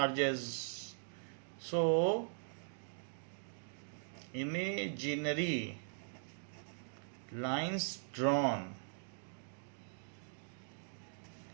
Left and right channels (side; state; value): left; silent; digital silence